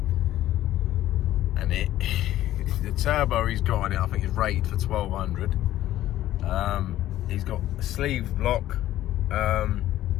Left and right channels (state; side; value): quieter; right; 13.7 dB